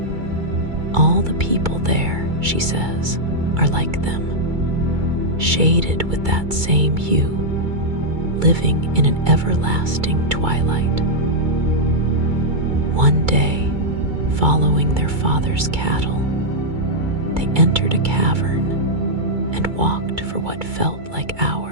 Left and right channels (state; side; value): late; left; 2.3 ms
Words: All the people there, she says, are like them, shaded with that same hue, living in an everlasting twilight. One day, following their father's cattle, they entered a cavern and walked for what felt like